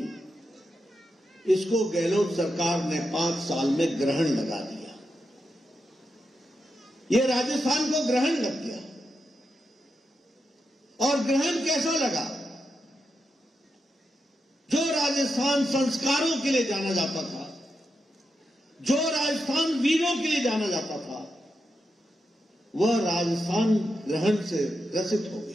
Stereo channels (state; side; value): normal; both; correlation 0.87